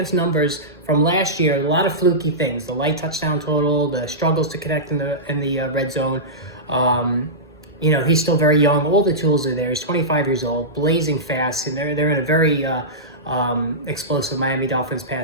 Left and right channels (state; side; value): normal; both; correlation -0.16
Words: numbers from last year, a lot of fluky things: the light touchdown total, the struggles to connect in the red zone. He's still very young. All the tools are there. He's 25 years old, blazing fast, and they're in a very explosive Miami Dolphins